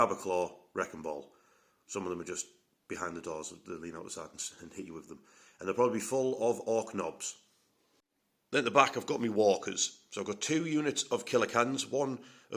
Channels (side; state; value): both; identical; correlation 1.00